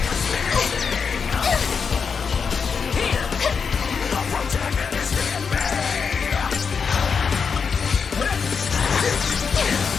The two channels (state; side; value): quieter; right; 5.9 dB